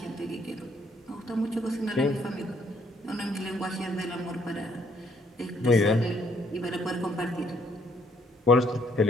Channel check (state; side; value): normal; both; correlation 0.67